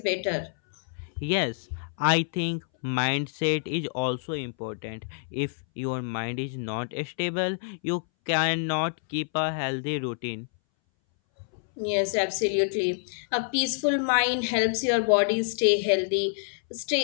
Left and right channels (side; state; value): right; silent; 60 dB below the other